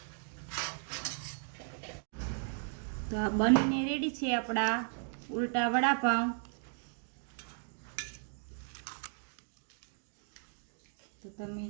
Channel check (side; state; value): left; silent; 54 dB below the other